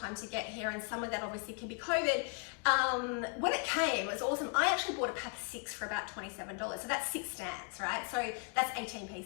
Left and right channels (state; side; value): quieter; right; 36.3 dB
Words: to get here, and some of that obviously can be COVID, when it came, it was awesome. I actually bought a pack of 6 for about $27, so that's 6 stands, right? So that's 18